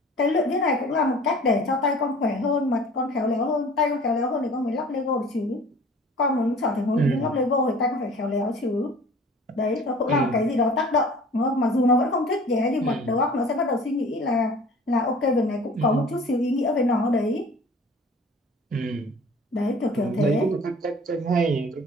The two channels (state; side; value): normal; both; correlation 0.46